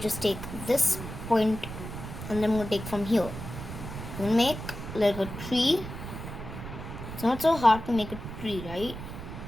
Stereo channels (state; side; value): noise; right; rumble, 9 dB below the sound